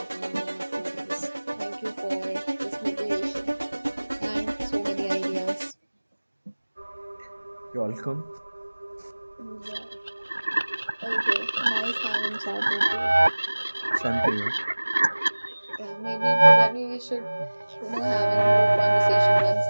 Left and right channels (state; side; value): inverted; both; correlation -1.00